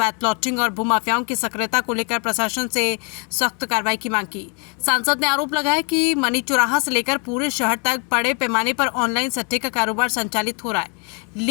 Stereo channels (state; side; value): quieter; right; 36.5 dB